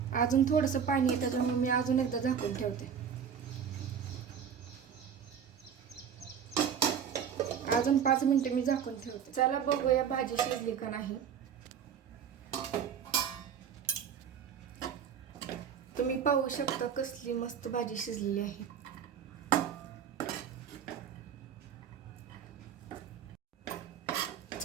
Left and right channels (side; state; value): left; quieter; 7.7 dB